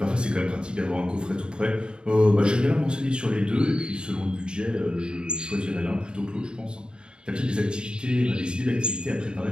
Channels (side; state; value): left; late; 0.050 ms